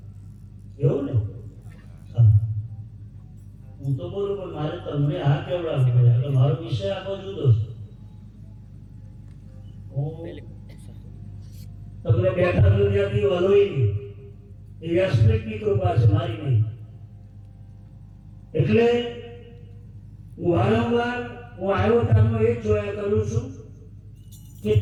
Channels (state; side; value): identical; both; correlation 1.00